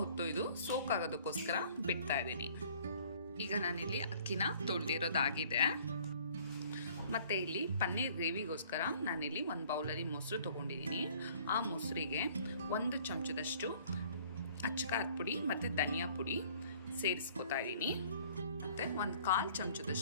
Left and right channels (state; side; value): inverted; both; correlation -0.55